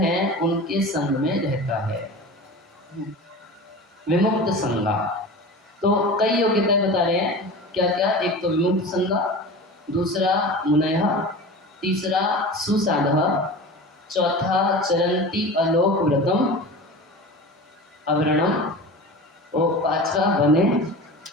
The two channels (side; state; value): both; normal; correlation 0.33